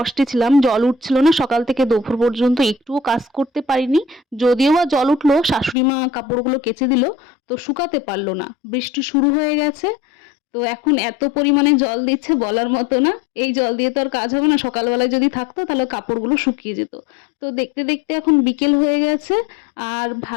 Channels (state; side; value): drops out; right; at 5.8 s